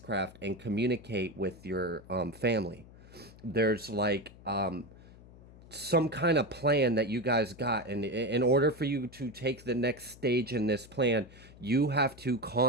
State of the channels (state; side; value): noise; left; hum, 21 dB below the sound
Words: and communicate with your family. There's like some kind of plan that you guys got, and in order for you to take the next stage in this plan, you have to